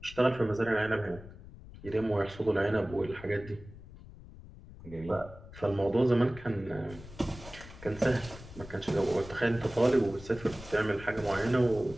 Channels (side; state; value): left; noise; rumble, 17 dB below the sound